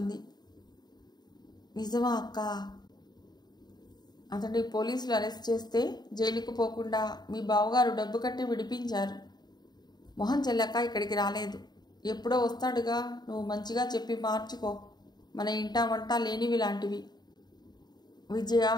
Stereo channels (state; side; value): late; right; 0.20 ms